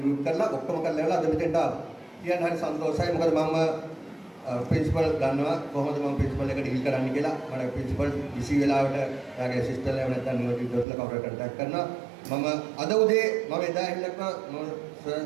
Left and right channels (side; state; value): left; drops out; at 10.9 s